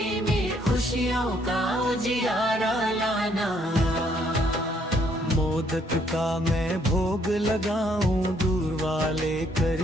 में खुशियों का उजियारा लाना। मोदक का मैं भोग लगाऊं, दूर वाले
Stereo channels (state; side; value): normal; both; correlation 0.68